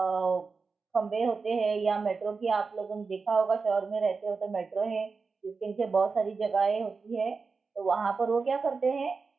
खंबे होते हैं, या मेट्रो की आप लोगों ने देखा होगा, शहर में रहते हो तो मेट्रो है जिसके नीचे बहुत सारी जगहें होती है, तो वहां पर वो क्या करते हैं,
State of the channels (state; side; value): quieter; left; 4.6 dB